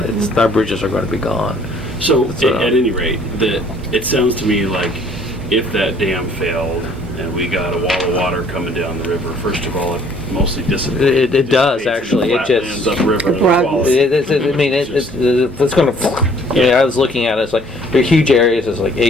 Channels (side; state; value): both; normal; correlation 0.58